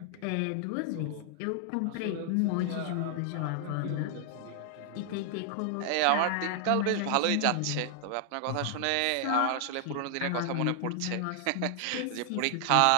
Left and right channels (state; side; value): different; both; correlation 0.00